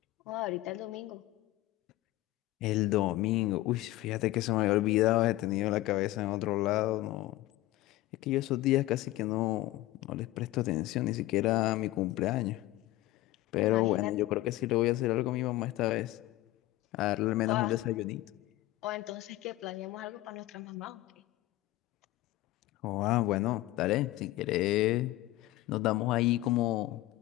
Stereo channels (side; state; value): right; quieter; 17.2 dB